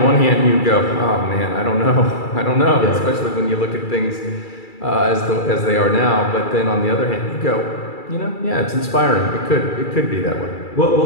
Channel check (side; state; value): right; late; 2.3 ms